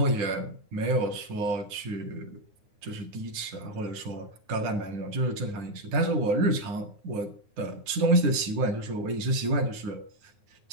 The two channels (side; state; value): left; late; 9.5 ms